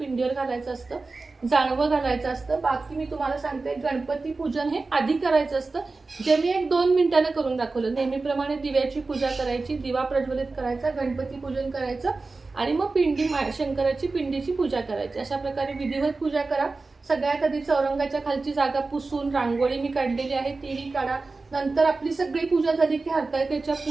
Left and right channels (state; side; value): quieter; left; 3.7 dB